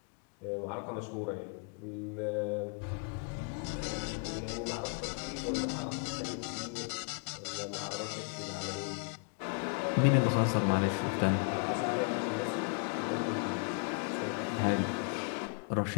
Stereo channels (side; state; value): right; quieter; 39.7 dB